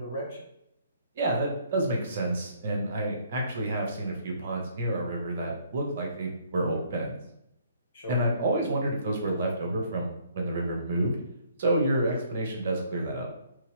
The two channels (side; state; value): both; inverted; correlation -0.64